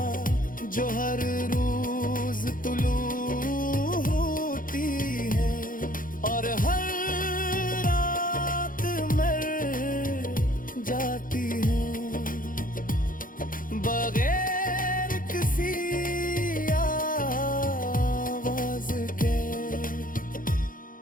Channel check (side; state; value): right; late; 0.40 ms